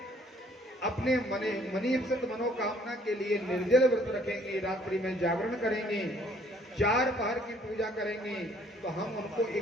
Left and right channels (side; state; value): both; normal; correlation 0.61